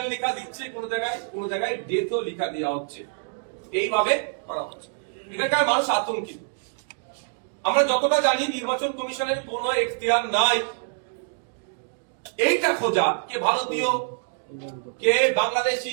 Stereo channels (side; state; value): left; silent; digital silence